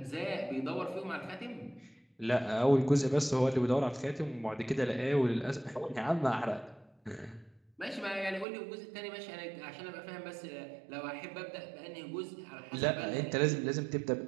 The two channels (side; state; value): left; drops out; at 8.5 s